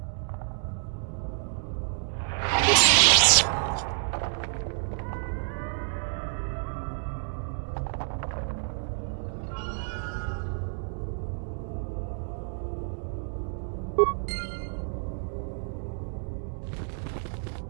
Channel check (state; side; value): silent; left; 59 dB below the other